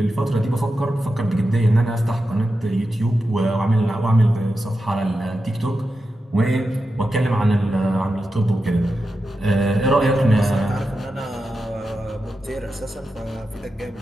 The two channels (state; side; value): normal; both; correlation 0.90